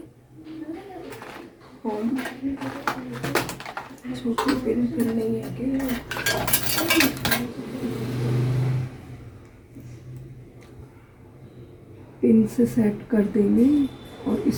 हम छोटी पिन नहीं है कि पिन से सेट कर देंगे और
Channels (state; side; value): identical; both; correlation 1.00